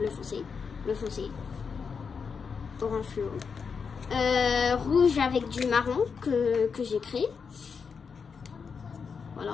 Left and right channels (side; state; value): right; quieter; 5.8 dB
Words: foncé, orange fluo, rouge avec du marron que j'ai créé.